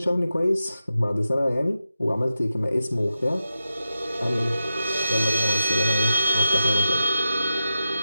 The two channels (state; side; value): inverted; both; correlation -0.91